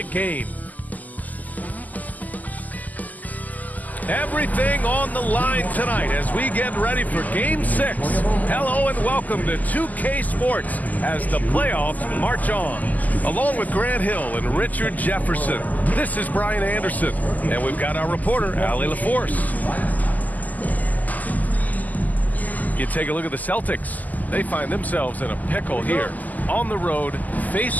game. Everything on the line tonight as we get ready for Game 6. Hello and welcome to 2K Sports as the playoffs march on. Along with Grant Hill and Richard Jefferson, this is Brian Anderson, and we've got our reporter, Allie LaForce. You take a look at the Celtics. They find themselves in a pickle here. On the road,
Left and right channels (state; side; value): late; right; 0.080 ms